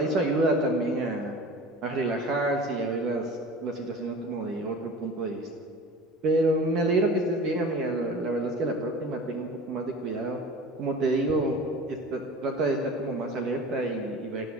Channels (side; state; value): both; normal; correlation 0.38